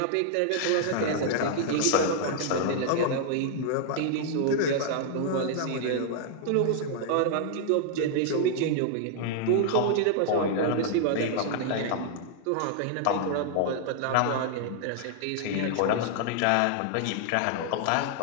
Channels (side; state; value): both; different; correlation -0.01